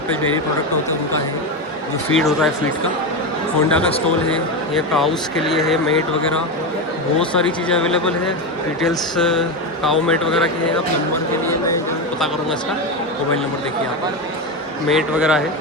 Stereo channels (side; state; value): both; normal; correlation 0.14